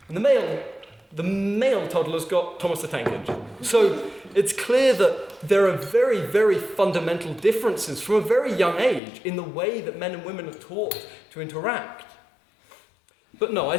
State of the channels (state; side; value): drops out; right; at 9.0 s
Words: And the male toddlers got Thomas the Tank Engine. So it's clear that there are very, very fundamental differences from a very young age in the way that men and women are taught to interact. But no, I